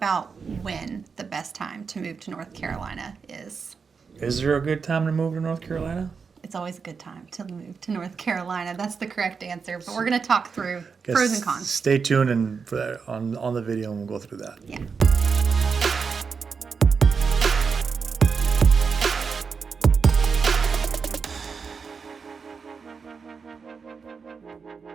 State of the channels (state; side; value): quieter; left; 5.5 dB